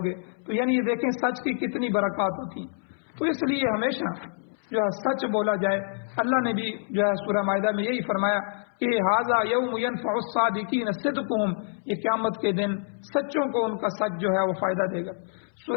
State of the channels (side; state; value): right; silent; 60 dB below the other